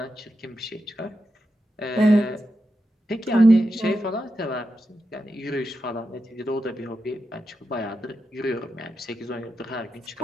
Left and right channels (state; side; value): normal; both; correlation 0.87